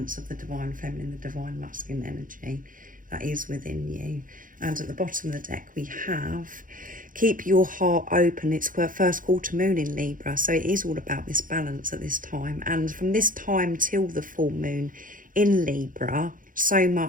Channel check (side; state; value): left; late; 0.39 ms